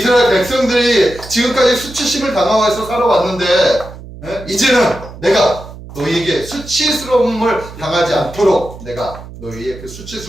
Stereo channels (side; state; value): right; noise; hum, 15 dB below the sound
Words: 백성들이 지금까지 수치심을 당하면서 살아왔는데 이제는 내가 너희에게 수치스러움을 당하지 않도록 내가 너희의 그